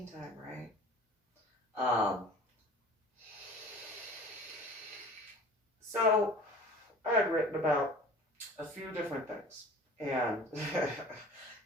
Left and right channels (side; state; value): both; normal; correlation 0.43